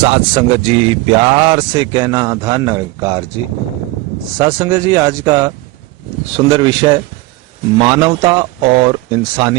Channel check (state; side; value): quieter; left; 20.8 dB